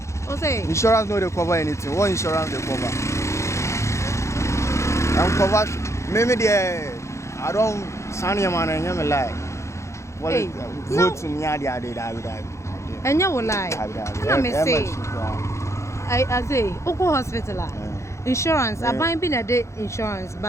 say insurance no dey cover anything what insurance dey cover I'm cover me there I don't sign your man and me lie hey, vote me ade and you will lie na me say I say oko hospital insurance aban bi na de insurance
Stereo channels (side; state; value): right; late; 0.14 ms